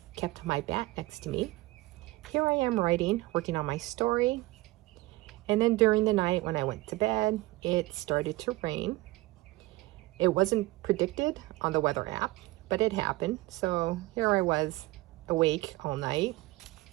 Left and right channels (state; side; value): quieter; left; 20.0 dB